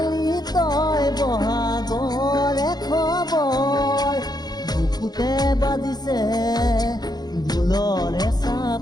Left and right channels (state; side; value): late; right; 0.19 ms